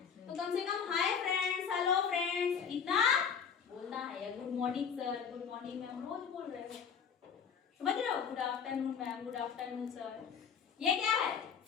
तो कम से कम हाय फ्रेंड्स, हेलो फ्रेंड्स इतना बोलना है, या good morning sir, good morning ma'am रोज बोल रहे हो, समझ रहे हो, good afternoon ma'am, good afternoon sir, ये क्या है,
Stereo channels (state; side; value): quieter; right; 6.9 dB